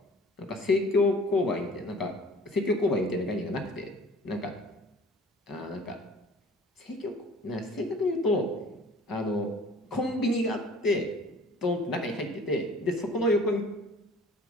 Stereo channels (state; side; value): normal; both; correlation 0.49